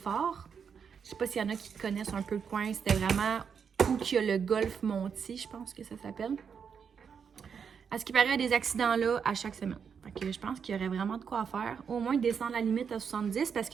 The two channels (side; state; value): left; quieter; 6.8 dB